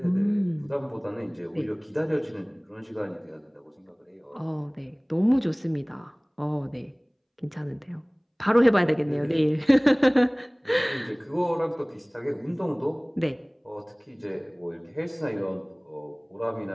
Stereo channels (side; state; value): both; identical; correlation 1.00